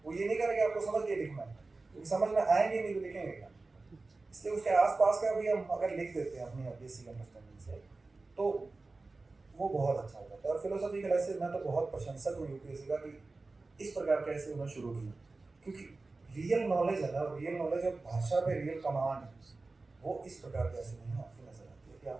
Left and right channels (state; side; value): quieter; left; 3.5 dB